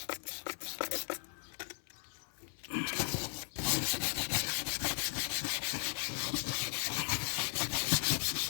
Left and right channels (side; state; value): right; silent; 53 dB below the other